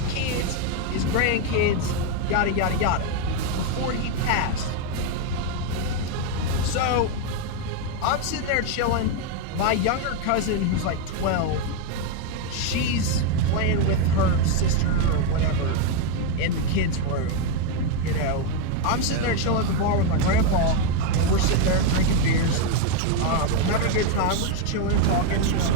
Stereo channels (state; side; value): different; both; correlation 0.02